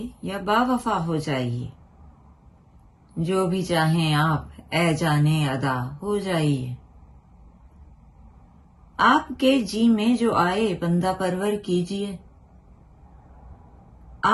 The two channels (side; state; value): both; identical; correlation 1.00